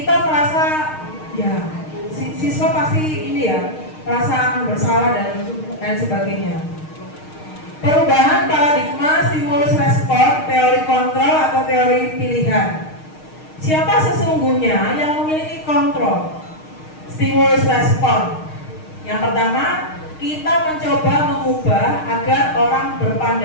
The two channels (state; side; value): late; right; 6.5 ms